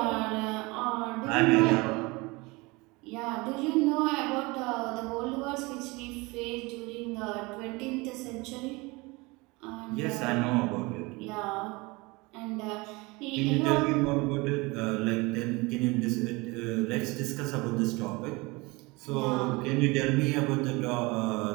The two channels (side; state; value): left; quieter; 24.7 dB